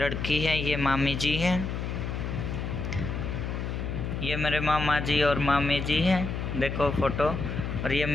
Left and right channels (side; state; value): left; noise; hum, 3 dB below the sound